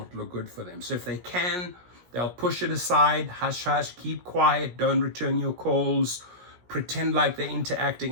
look good for them. So if they can, they'll push it aside, hush hush, keep quiet, don't return your calls, pretend like they're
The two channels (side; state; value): left; late; 17 ms